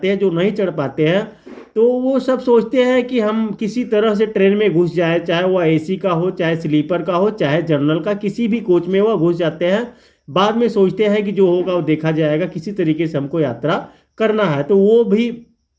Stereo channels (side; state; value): both; identical; correlation 1.00